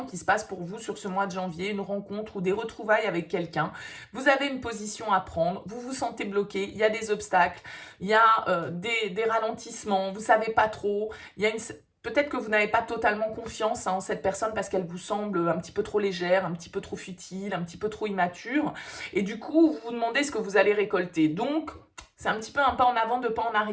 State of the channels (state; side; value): identical; both; correlation 1.00